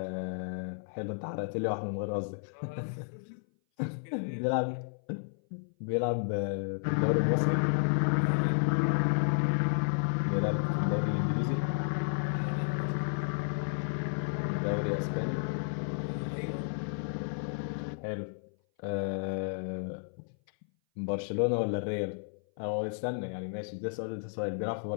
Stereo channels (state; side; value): silent; right; 56 dB below the other